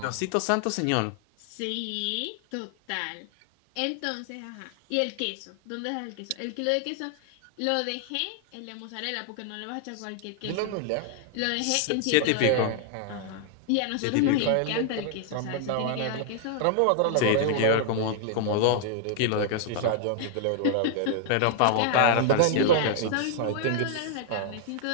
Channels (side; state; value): both; different; correlation 0.00